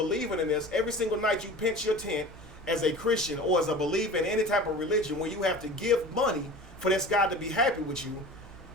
in this, every single night you pinch your tent as a Christian or as a believer in any type of religion where you have to give money for this God to be happy with you,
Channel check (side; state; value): both; normal; correlation 0.38